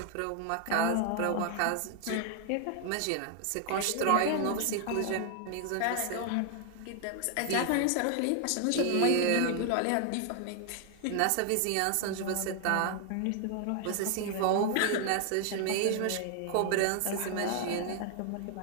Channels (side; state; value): both; different; correlation 0.00